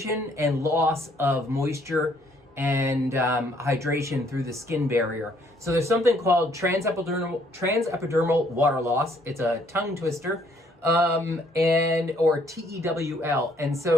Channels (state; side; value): normal; both; correlation 0.65